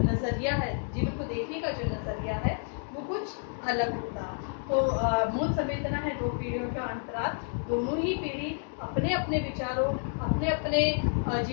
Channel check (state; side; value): silent; right; 58 dB below the other